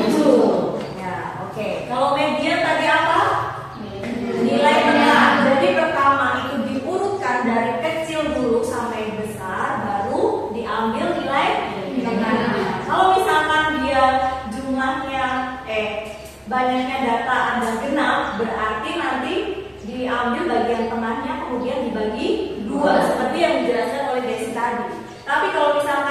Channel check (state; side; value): identical; both; correlation 1.00